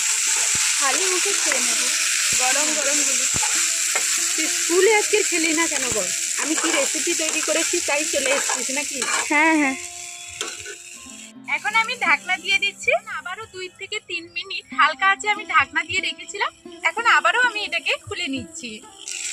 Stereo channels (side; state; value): both; identical; correlation 1.00